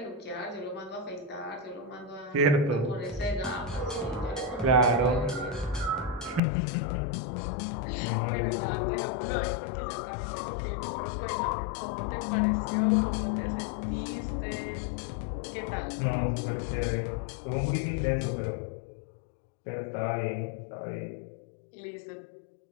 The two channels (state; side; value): drops out; right; at 6.4 s